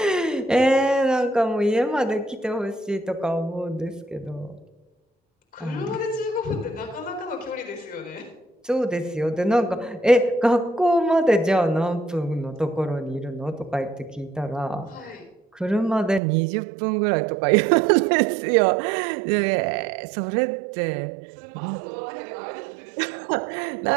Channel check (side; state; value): left; drops out; at 16.2 s